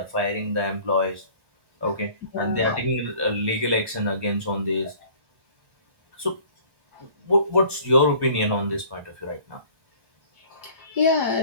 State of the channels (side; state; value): left; late; 1.2 ms